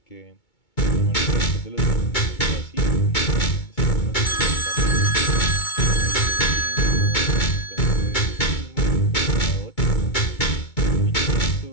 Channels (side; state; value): right; late; 2.2 ms